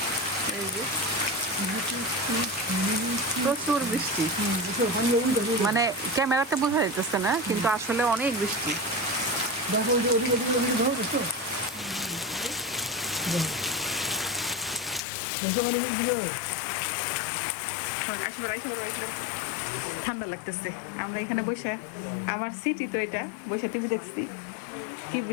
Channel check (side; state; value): right; drops out; at 15.0 s